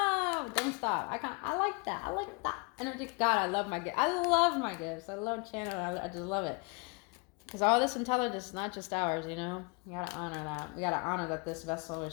Don't stop. I like that. I like that energy. God, I love my gifts. I love my gifts. I love channeling. I just love it. Because all this intelligence is not just ours, you know? You gotta honor that. We gotta honor that this vessel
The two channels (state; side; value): quieter; right; 30.8 dB